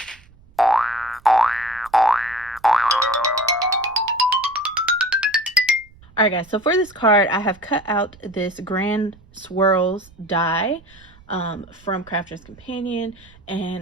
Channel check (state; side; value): noise; right; rumble, 26 dB below the sound